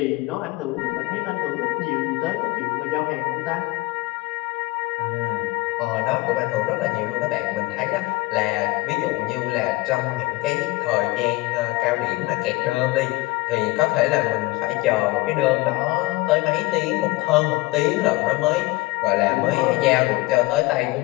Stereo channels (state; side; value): quieter; right; 21.1 dB